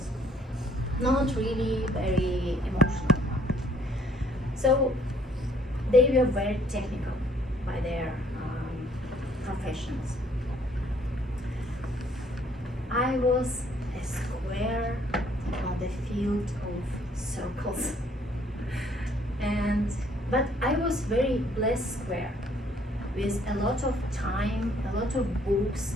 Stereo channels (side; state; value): both; normal; correlation 0.63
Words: not really very emotional. So they were very technical by their professions. I was a square on the field of circles, but I was very blessed square with a lot of time, a lot of books.